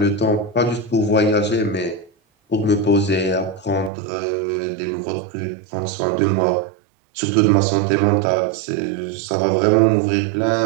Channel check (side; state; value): left; drops out; at 3.9 s